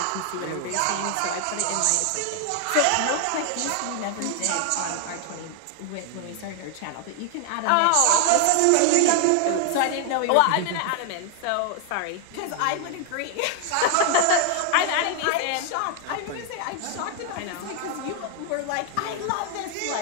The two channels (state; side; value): different; both; correlation 0.00